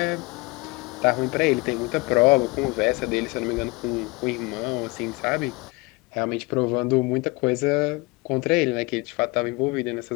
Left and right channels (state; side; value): quieter; right; 25.9 dB